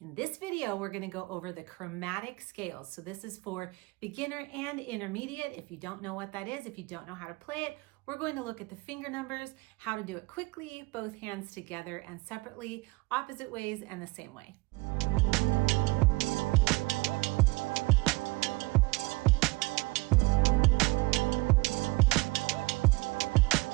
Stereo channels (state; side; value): quieter; left; 24.4 dB